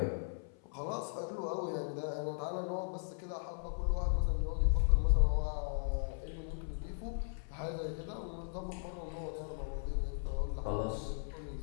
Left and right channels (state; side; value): silent; right; 53 dB below the other